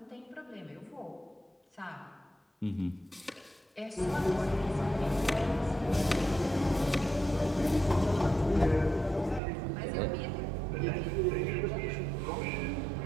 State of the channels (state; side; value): drops out; left; at 9.4 s